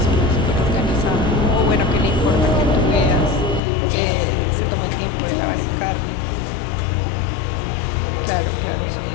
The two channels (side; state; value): right; drops out; at 3.6 s